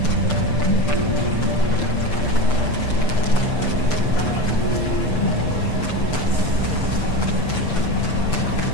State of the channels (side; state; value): right; late; 6.8 ms